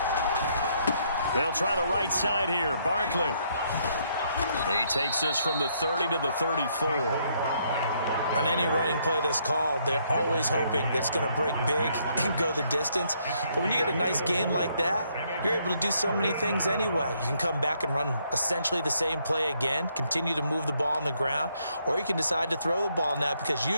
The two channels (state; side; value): inverted; both; correlation -0.71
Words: They'll try the right side here. Barkley. He takes this from the 30 to the 34. On any running play that's called, they're always hoping that it's going to break big and go the distance. But when you get a nice gain like that, you're able to do so many things anyway. You can come back and run essentially the same play again, continue to move the ball on the ground, or you can decide to throw the ball now because